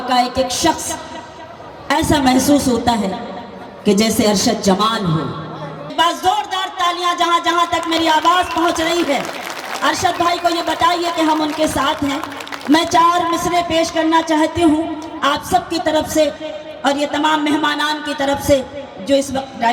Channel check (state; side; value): identical; both; correlation 1.00